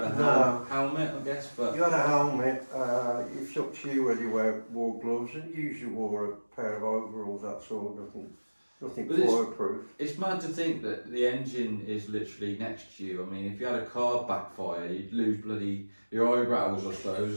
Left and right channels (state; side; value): inverted; both; correlation -1.00